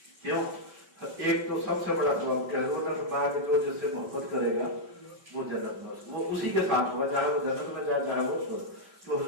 کیوں؟ ایک تو سب سے بڑا سبب کہ حضور نے فرمایا کہ جو جس سے محبت کرے گا وہ جنت میں وہ اسی کے ساتھ ہوگا، چاہے وہ جنت میں جائے چاہے وہ تو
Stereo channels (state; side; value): late; left; 5.2 ms